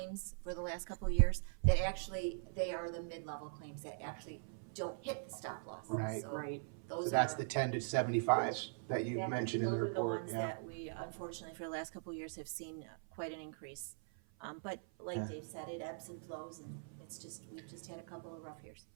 for the last couple of years, that actually, they are the mid-level claims that actually don't hit the stop loss. Right. So Right. those So that's are- the 10 to 75 that you mentioned in the Those are report. the ones Yeah. that we, unfortunately, for the last couple of years have seen quite an increase. But like Yeah. Dave said, it ebbs and flows, and we've just had a couple of rough years.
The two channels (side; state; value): left; silent; 50 dB below the other